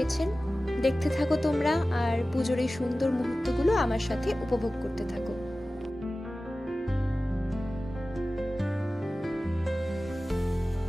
দেখতে থাকো তোমরা, আর পুজোর এই সুন্দর মুহূর্তগুলো আমার সাথে উপভোগ করতে থাকো।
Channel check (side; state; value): both; normal; correlation 0.96